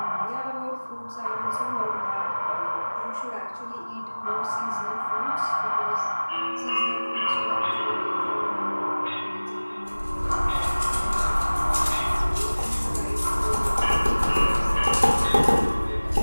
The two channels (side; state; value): both; inverted; correlation -1.00